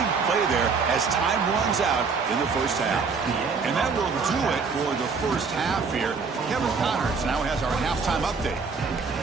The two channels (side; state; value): left; quieter; 5.0 dB